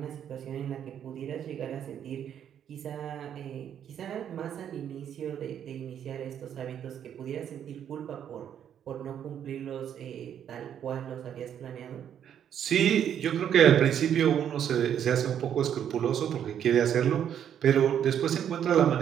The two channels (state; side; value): quieter; left; 9.3 dB